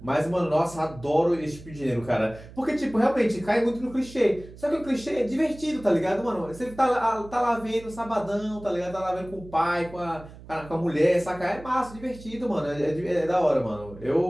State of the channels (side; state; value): right; noise; hum, 18 dB below the sound